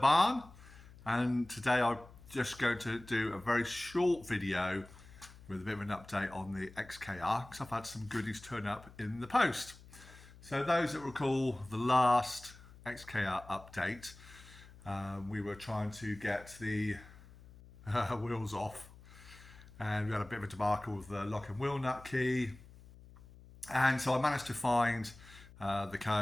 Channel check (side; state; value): left; noise; hum, 20 dB below the sound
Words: and today I'm just going to do a very short video with a bit of an update on the XKR because I've had some goodies turn up in the post. So those that recall the last XKR update, we were trying to get the wheels off, and we had a bit of a debacle with the lock and wheel nut key, and so I managed to find the